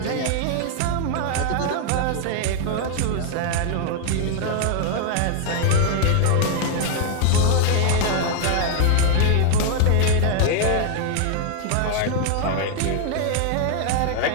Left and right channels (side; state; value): both; different; correlation 0.00